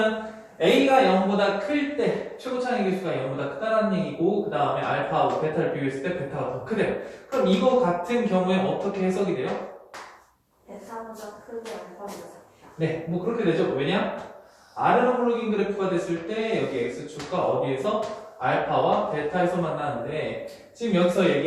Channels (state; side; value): identical; both; correlation 1.00